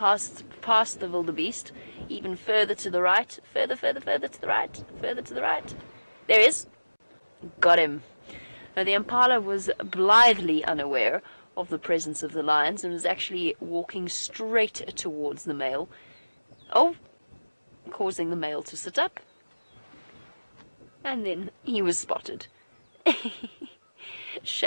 the wildebeest, even further to the right, further to the right, further to the right. There is. Got him. Now, the impala was blithely unaware of the presence of the lions and was actually walking straight towards the male. Oh, causing the male to sit up. And then he was spotted.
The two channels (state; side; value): inverted; both; correlation -1.00